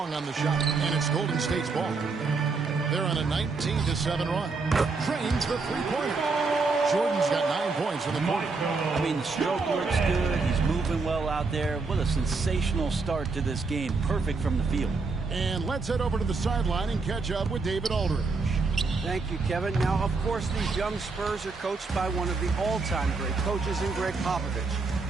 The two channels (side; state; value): left; quieter; 4.2 dB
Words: on the shot. And it's Golden State's ball. They're on a 19-7 run. Drains the three-pointer. Jordan's got 9 points in the quarter. I mean, the stroke looks good. He's moving well out there. What a sensational start to this game. Perfect from the field. And let's head over to the sideline and catch up with David Aldridge. Thank you, Kevin. Now, of course, these young Spurs are coached by one of the all-time great coaches in Greg Popovich.